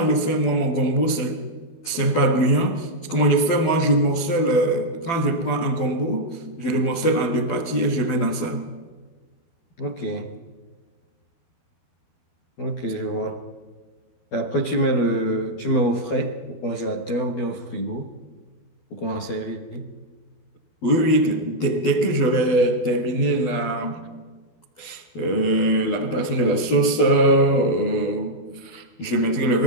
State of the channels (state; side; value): late; right; 12 ms